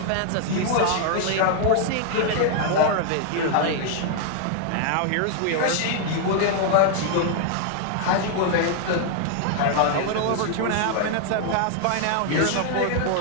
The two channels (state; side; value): different; both; correlation 0.00